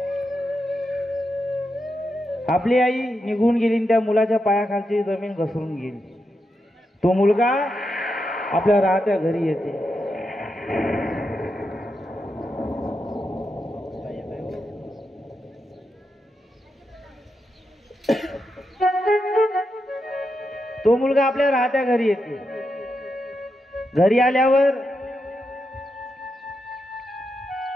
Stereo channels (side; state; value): both; normal; correlation 0.85